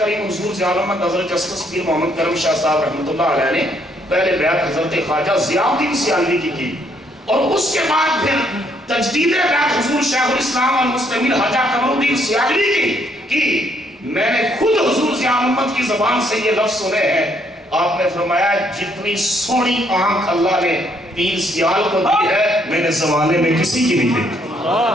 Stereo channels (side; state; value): both; normal; correlation 0.70